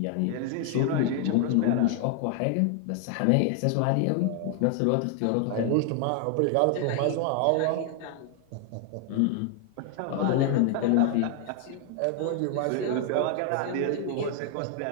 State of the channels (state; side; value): different; both; correlation 0.00